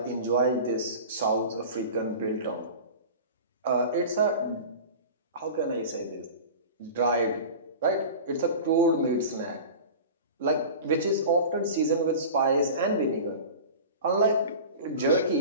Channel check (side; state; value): both; inverted; correlation -0.34